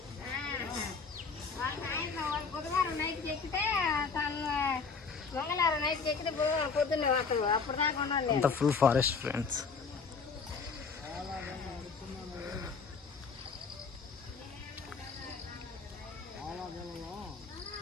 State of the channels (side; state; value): right; quieter; 5.1 dB